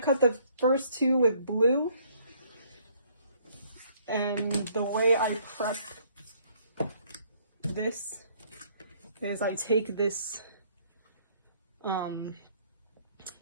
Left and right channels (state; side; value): inverted; both; correlation -0.63